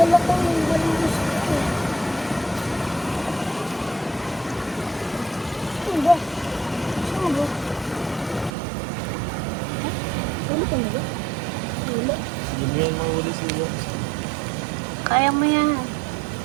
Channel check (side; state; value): left; drops out; at 8.5 s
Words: ko yung malinis ko. Ano ba? Saan ba? Wala ka na ba? Wala. Hindi yan mahuli sila. Kaya mo yan.